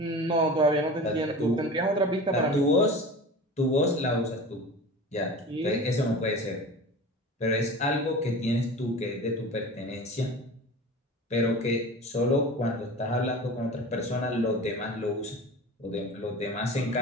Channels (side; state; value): both; normal; correlation 0.35